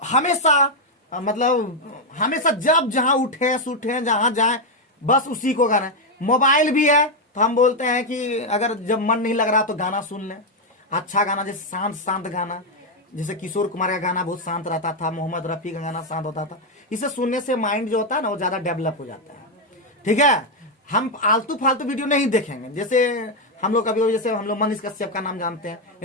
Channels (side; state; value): both; normal; correlation 0.03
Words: हमेशा जब जहां उठे सूठे जहां जाए बस उसी को करें। मोबाइल भी है तो हम बोलते हैं कि अगर जब मन नहीं लग रहा तो गाना सुन लें। अच्छा गाना, जैसे शांत गाना, जैसे किशोर कुमार का गाना बहुत शांत रहता था, मोहम्मद रफी का गाना शांत होता था। इसे सुनने से माइंड जो होता है ना, वो ज्यादा डेवलप हो जाता है। ठीक है, हम आलतू फालतू वीडियो नहीं देखेंगे। जैसे हम लोग कभी, जैसे हम लोग मनीष कश्यप का नाम जानते हैं,